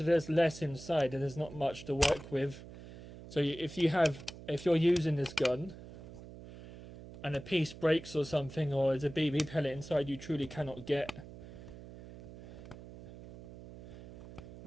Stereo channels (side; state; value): right; noise; hum, 15 dB below the sound